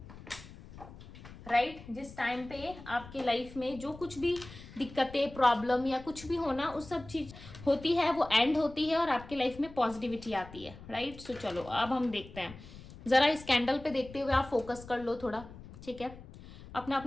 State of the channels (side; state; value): left; noise; rumble, 17 dB below the sound